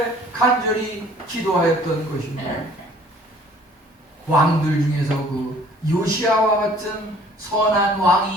간절히 기도하였던 것입니다. 왕들 중에서 그 요시아와 같은 선한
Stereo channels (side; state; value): both; normal; correlation 0.54